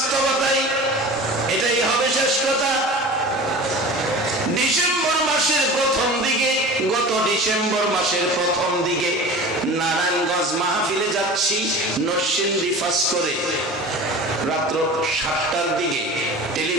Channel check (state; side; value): normal; both; correlation 0.37